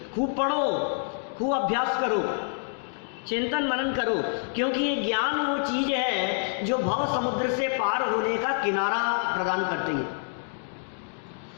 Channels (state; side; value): silent; right; digital silence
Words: खूब पढ़ो, खूब अभ्यास करो, चिंतन मनन करो, क्योंकि ये ज्ञान वो चीज है जो भव समुद्र से पार होने का किनारा प्रदान करती है।